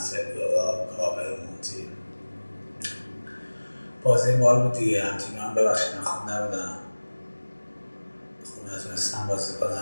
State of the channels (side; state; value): both; inverted; correlation -1.00